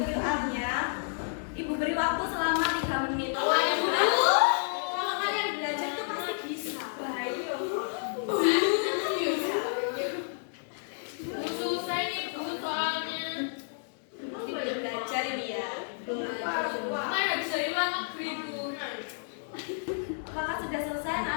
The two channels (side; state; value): right; silent; digital silence